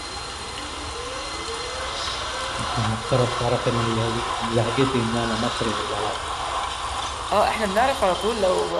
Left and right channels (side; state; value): both; identical; correlation 1.00